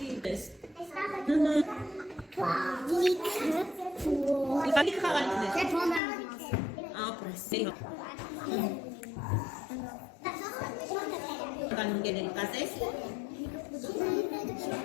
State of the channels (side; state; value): right; drops out; at 6.0 s